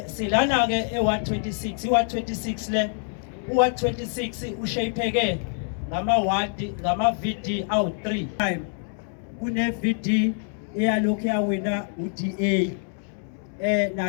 silana ke e126 i126 le u126 ushaypheke ngama ward ngama VD awu3 kune VD eyalokhu yawina uDA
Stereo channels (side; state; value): right; silent; 61 dB below the other